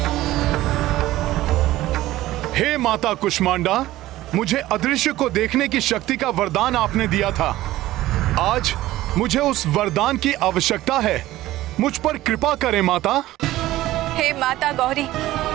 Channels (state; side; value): quieter; left; 15.9 dB